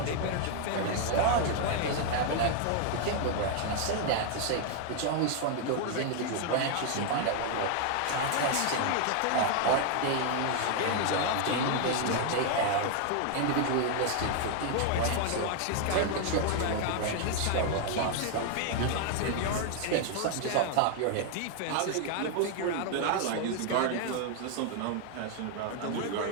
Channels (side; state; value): both; different; correlation 0.00